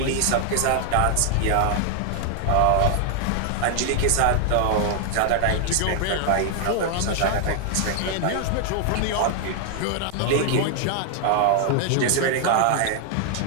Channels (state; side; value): different; both; correlation 0.00